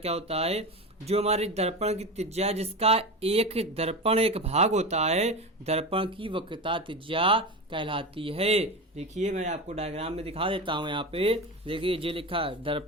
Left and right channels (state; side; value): normal; both; correlation 0.23